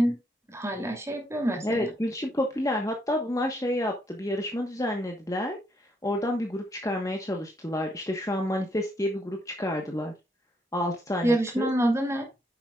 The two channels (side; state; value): both; normal; correlation 0.74